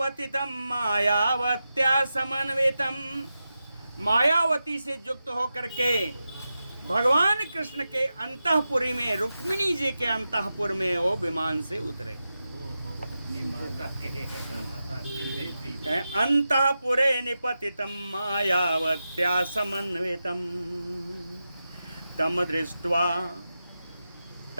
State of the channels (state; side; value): inverted; both; correlation -0.91